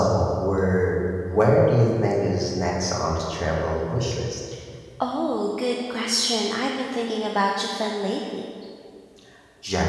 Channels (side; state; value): both; identical; correlation 1.00